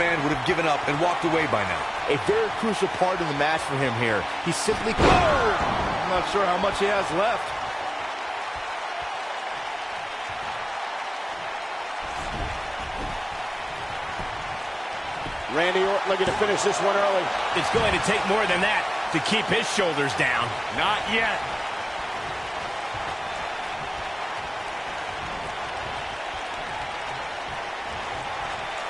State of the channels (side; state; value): both; identical; correlation 1.00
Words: would have given up and walked away by now. A very crucial part in the match for him here. He simply... I'm not sure how much he has left. Randy Orton looking to finish this one early. It's going to take more than that to keep his shoulders down. Not yet.